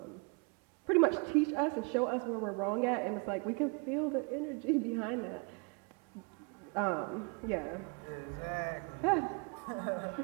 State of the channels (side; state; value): left; quieter; 34.3 dB